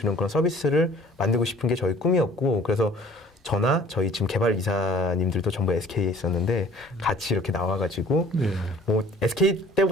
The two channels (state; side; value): normal; both; correlation 0.52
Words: 그런 서비스를 만들고 싶은 게 저희 꿈이었고 그래서 저나 저희 지금 개발 이사님들도 전부 SK에 있었는데 같이 이렇게 나와가지고 뭐 SK